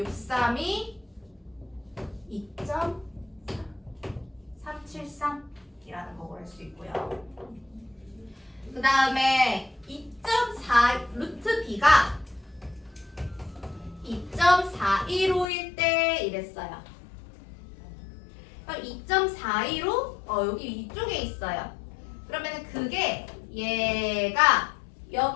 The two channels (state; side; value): drops out; right; at 15.5 s